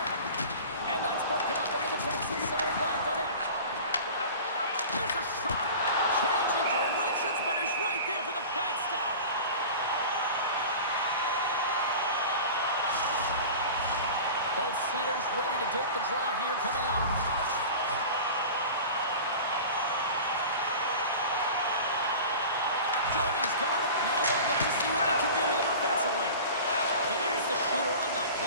And that's broken up in the defensive zone by Godet. There's a shot. Changing directions, but he's right there for the pad stop. Both centers ready to take the draw here coming up. Johnny's got it. Now they'll look to see what they can do with him offensively. There's the shooter on that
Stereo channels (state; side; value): inverted; both; correlation -0.36